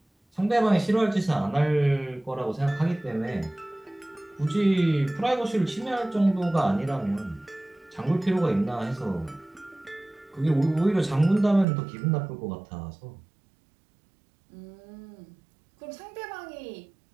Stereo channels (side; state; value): left; drops out; at 11.7 s